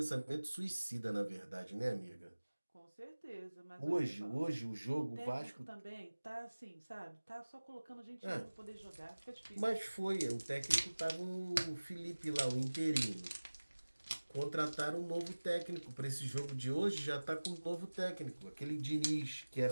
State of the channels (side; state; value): both; inverted; correlation -1.00